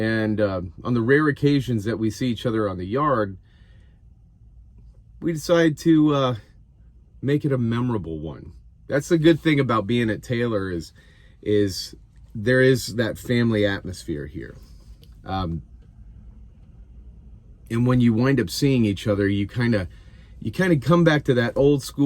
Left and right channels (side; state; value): both; identical; correlation 1.00